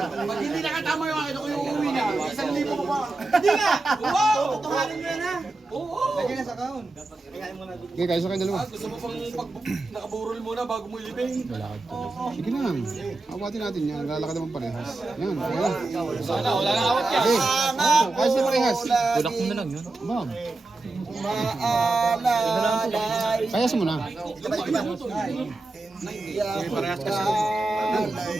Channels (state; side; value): quieter; left; 3.1 dB